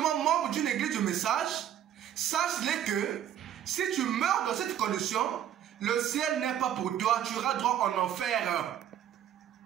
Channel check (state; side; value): quieter; left; 10.5 dB